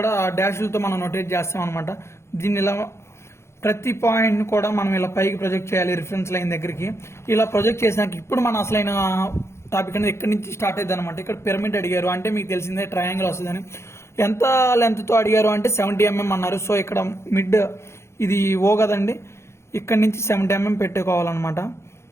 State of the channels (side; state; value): right; late; 0.13 ms